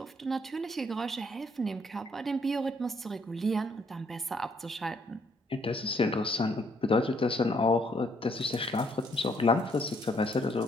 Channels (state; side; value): normal; both; correlation 0.68